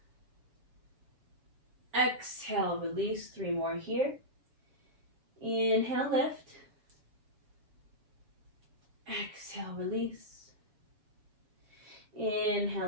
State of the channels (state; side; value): late; left; 7.2 ms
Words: Exhale, release. 3 more here. Inhale, lift. Exhale, release.